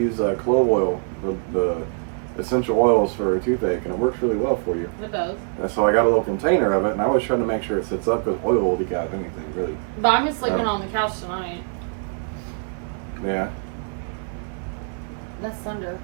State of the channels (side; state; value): left; silent; 59 dB below the other